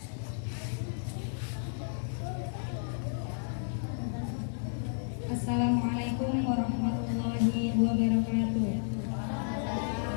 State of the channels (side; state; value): right; silent; digital silence